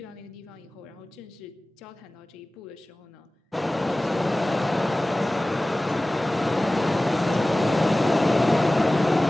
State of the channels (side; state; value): both; normal; correlation 0.97